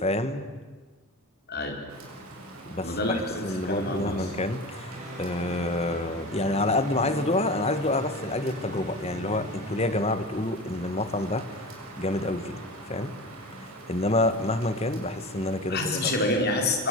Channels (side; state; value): both; normal; correlation 0.31